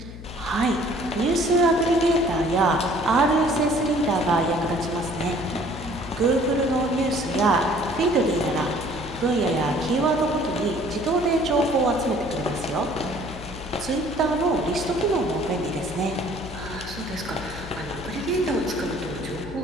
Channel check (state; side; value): noise; left; hum, 13 dB below the sound